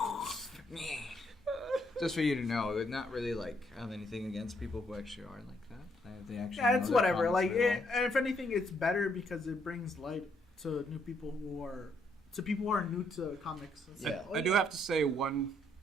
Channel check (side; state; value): both; normal; correlation 0.72